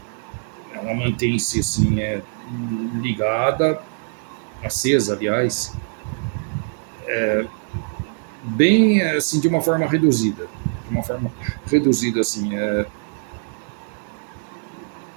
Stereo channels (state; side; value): silent; left; digital silence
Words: ligada, acesa, aliás, bem assim de uma forma reduzida, assim,